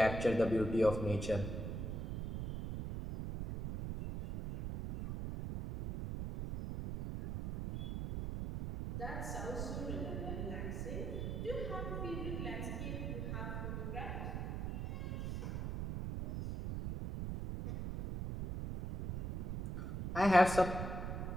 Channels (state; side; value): noise; right; rumble, 3 dB below the sound